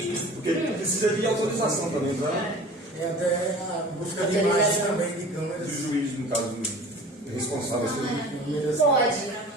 Porque precisa de autorização também, tá? E até a busca de imagens também de câmeras. Do juiz, no caso, responsável. Pode.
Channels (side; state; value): both; normal; correlation 0.42